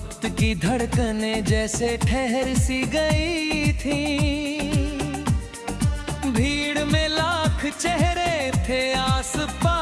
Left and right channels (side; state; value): both; identical; correlation 1.00